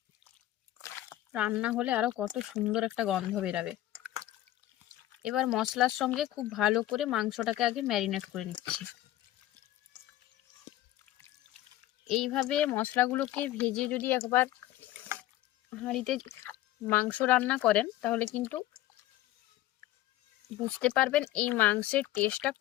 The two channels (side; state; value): right; quieter; 14.8 dB